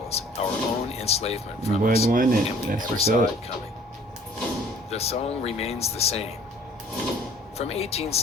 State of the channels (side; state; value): both; normal; correlation 0.54